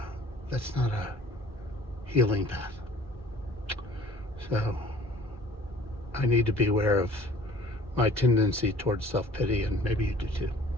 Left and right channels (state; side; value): normal; both; correlation 0.50